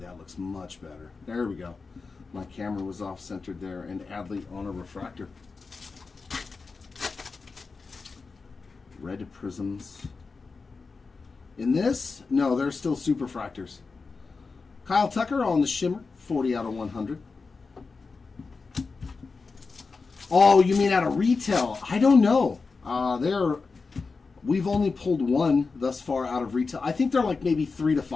looks much better. There we go. My camera was off-centered there. And Adley on a refractor. Red prisms. In this, no, they're still superfractors. Kyle Tucker on the shimmer, 40 out of 100. Oh, you mean out of retail? I don't know. We've only pulled one thus far out of retail. I think they're like maybe 3 to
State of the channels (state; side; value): quieter; right; 4.4 dB